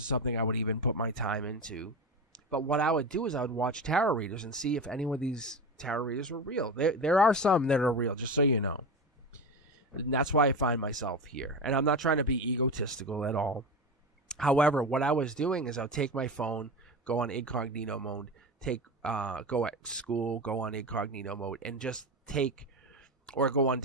something I would even put my time into. But what I would do is I would watch tarot readers and see if any of these tarot readers were real. There are some that are real, just so you know. And that's why I find myself here. And I'm not trying to be egotistical at all. However, what I was doing is I would take my phone, go on incognito mode, go at school, go on incognito mode, and just or go on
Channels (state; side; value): normal; both; correlation 0.23